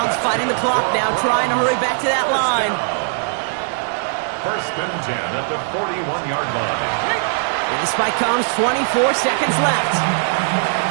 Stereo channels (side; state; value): left; silent; digital silence